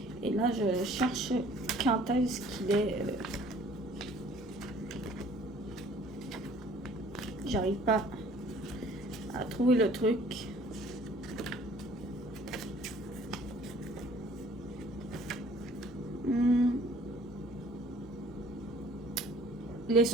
Et là, je cherche quand est-ce qu'il est. J'arrive pas à trouver le truc. il est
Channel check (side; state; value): both; normal; correlation 0.54